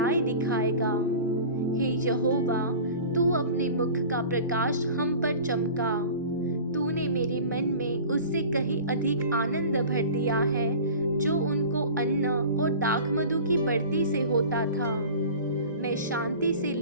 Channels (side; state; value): both; inverted; correlation -0.39